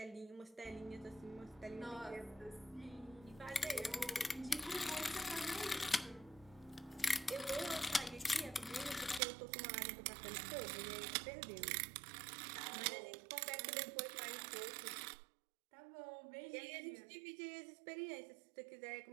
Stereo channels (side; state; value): left; drops out; at 9.2 s